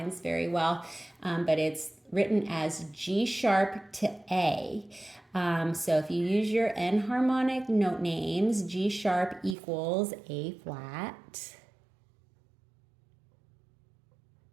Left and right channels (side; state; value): left; drops out; at 9.6 s